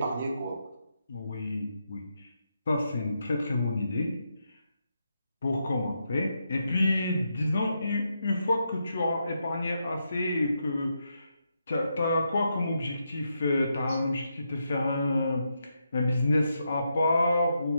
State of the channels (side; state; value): both; inverted; correlation -0.83